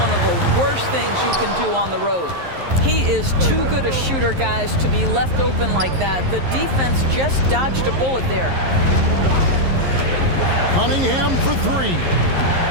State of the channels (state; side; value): late; left; 11 ms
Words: one of the worst things you can do on the road. He is too good a shooter, guys, to be left open like that. The defense just dodged a bullet there. Cunningham for 3.